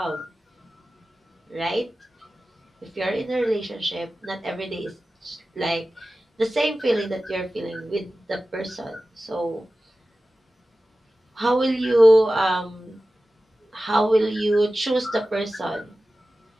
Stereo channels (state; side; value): normal; both; correlation 0.95